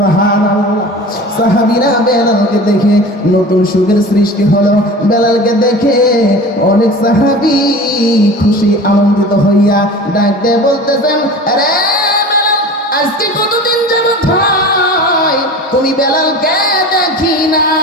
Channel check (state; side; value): normal; both; correlation 0.37